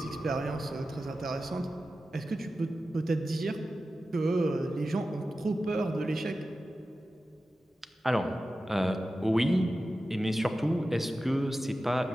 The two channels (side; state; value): both; normal; correlation 0.93